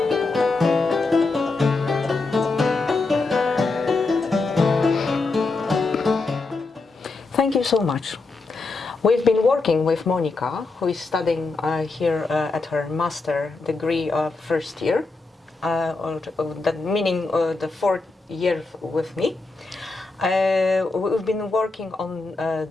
Thank you so much. We've been working with Monika, who is studying here at her master degree first year, that meaning the 4th year with me. We've been working on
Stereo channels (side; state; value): right; quieter; 3.7 dB